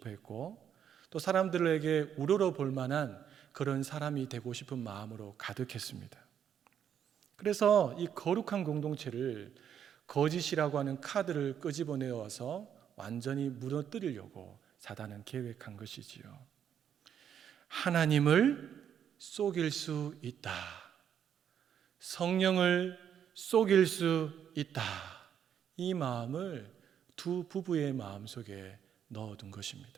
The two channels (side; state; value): left; quieter; 8.9 dB